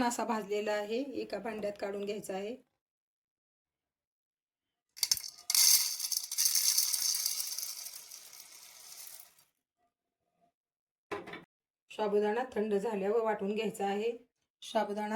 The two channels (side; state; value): both; identical; correlation 1.00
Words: असा भाजलेला आहे. एका भांड्यात काढून घ्यायचा आहे. साबुदाणा थंड झाल्यावर वाटून घ्यायचा आहे.